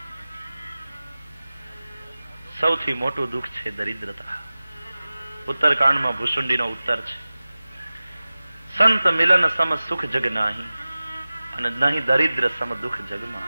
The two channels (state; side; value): inverted; both; correlation -0.97